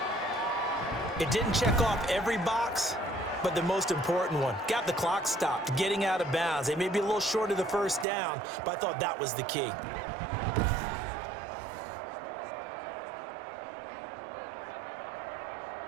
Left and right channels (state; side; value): drops out; left; at 8.1 s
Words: It didn't check off every box, but the most important one. Got the clock stopped, getting out of bounds. They may be a little short of the first down, but I thought that was the key.